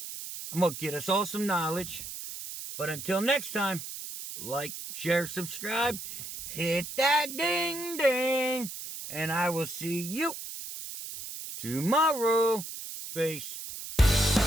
I'm going to get us all some knowledge. But until next time, like, share, subscribe, hit that ding ding, and I will see you tomorrow. Peace.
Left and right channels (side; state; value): right; noise; hiss, 9 dB below the sound